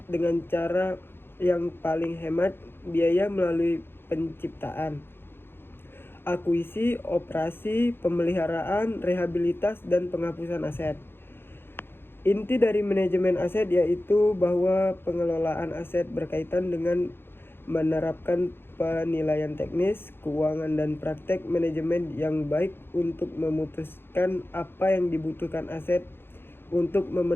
dengan cara yang paling hemat biaya melalui penciptaan, akuisisi, operasi, pemeliharaan, rehabilitas, dan penghapusan aset. Inti dari manajemen aset yaitu bahwa pengelolaan aset berkaitan dengan menerapkan penilaian teknis, keuangan, dan praktek manajemen yang baik untuk memutuskan apa yang dibutuhkan aset untuk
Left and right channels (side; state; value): right; late; 0.11 ms